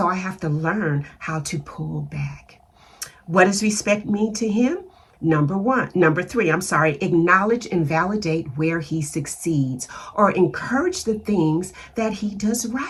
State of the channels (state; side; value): identical; both; correlation 1.00